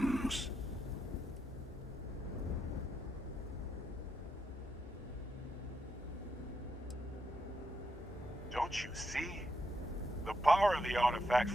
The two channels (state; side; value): normal; both; correlation 0.81